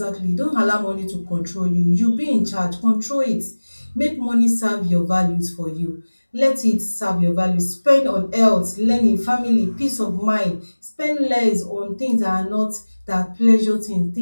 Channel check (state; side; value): inverted; both; correlation -1.00